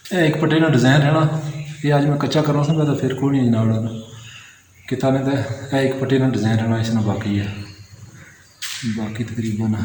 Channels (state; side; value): identical; both; correlation 1.00